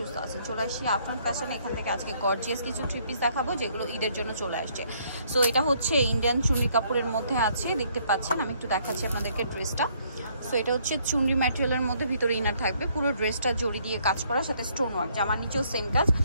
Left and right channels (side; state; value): both; inverted; correlation -0.67